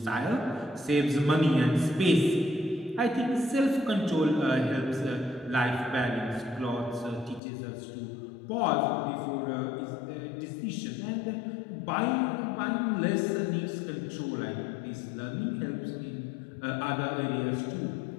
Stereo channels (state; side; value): drops out; right; at 7.4 s